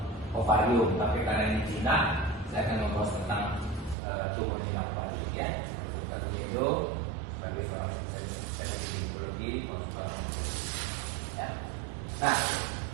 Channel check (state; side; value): drops out; left; at 4.0 s